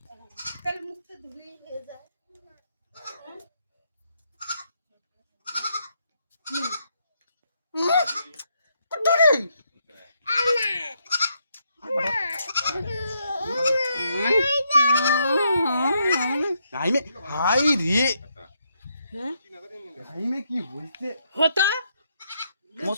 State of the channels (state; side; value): inverted; both; correlation -0.77